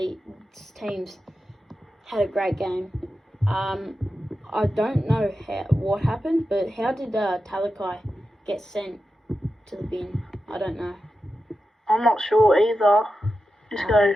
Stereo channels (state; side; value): normal; both; correlation 0.91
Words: teams had a great game. I don't know what happened, but how did Talakai get sent to the bin? I don't know. I'm not sure either. Just go